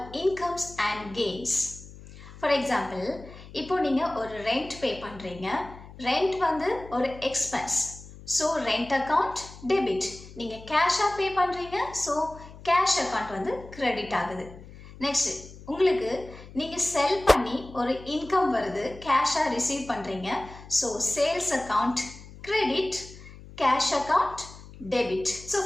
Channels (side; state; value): left; noise; hum, 17 dB below the sound